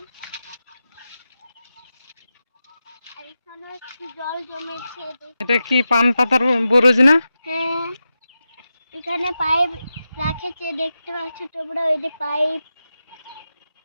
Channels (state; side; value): inverted; both; correlation -0.91